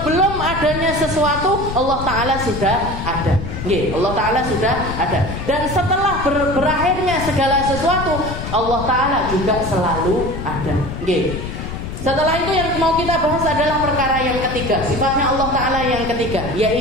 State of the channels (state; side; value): noise; left; rumble, 7 dB below the sound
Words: adanya sesuatu, Allah Ta'ala sudah ada. Allah Ta'ala sudah ada. Dan setelah berakhirnya segala sesuatu, Allah Ta'ala juga selalu ada. Setelah itu yang mau kita bahas adalah perkara yang ketiga, sifatnya Allah Ta'ala yang ketiga,